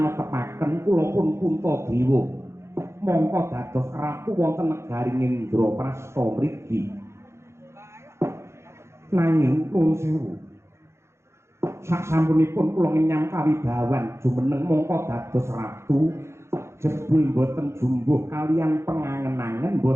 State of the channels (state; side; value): late; left; 0.13 ms